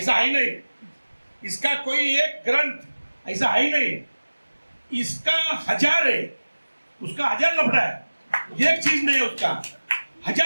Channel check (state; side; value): inverted; both; correlation -1.00